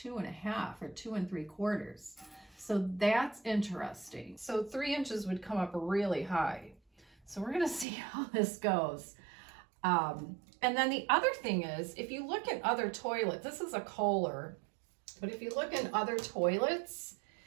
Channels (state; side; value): drops out; left; at 7.9 s